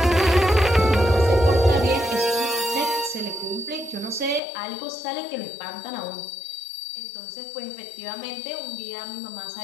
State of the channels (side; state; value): right; drops out; at 4.4 s